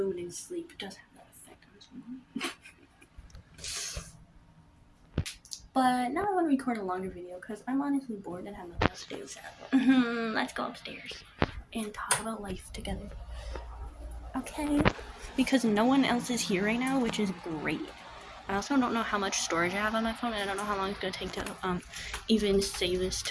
and sleep does have that effect on someone. But now I want to record a longer video because I'm honestly bored and have nothing else to do. So let's go upstairs and talk about life together. Okay? Because no one else is here right now, which is great. I also don't know how much storage I have on my phone, and I don't know how long it's going to take to even save this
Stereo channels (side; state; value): both; identical; correlation 1.00